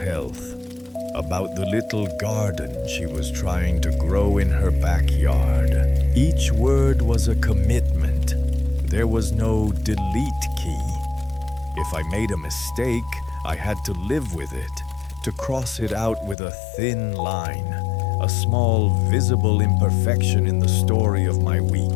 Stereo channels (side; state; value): right; drops out; at 16.4 s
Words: about the little garden she was trying to grow in her backyard. Each word was a commitment. There was no delete key. If I made a mistake, I had to live with it, to cross it out with a thin line, a small visible imperfection in the story of my